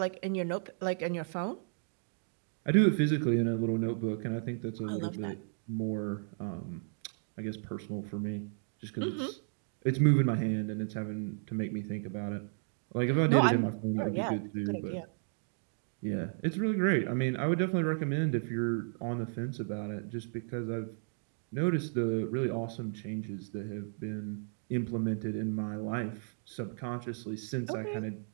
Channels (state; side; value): silent; left; digital silence